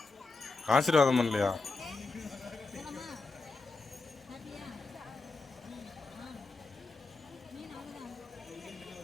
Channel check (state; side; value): quieter; right; 3.9 dB